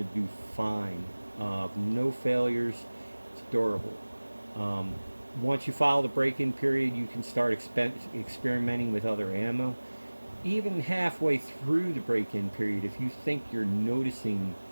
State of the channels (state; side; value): inverted; both; correlation -1.00